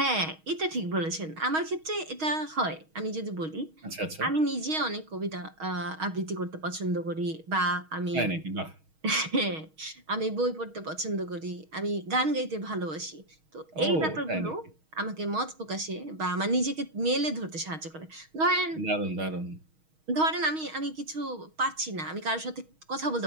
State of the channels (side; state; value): left; late; 6.3 ms